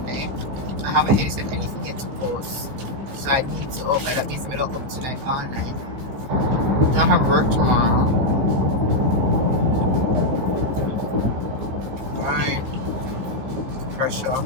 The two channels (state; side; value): late; left; 15 ms